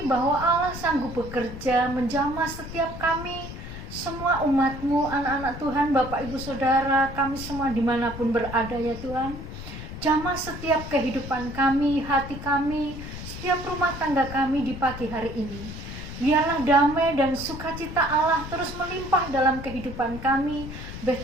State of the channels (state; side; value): noise; left; rumble, 10 dB below the sound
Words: bahwa Allah sanggup bekerja menjamah setiap kami, semua umat-Mu, anak-anak Tuhan, Bapak Ibu Saudara, kami semua dimanapun berada ya Tuhan. Jamah setiap kehidupan kami, hati kami, setiap rumah tangga kami di pagi hari ini. Biarlah damai dan sukacita Allah terus melimpah dalam kehidupan kami.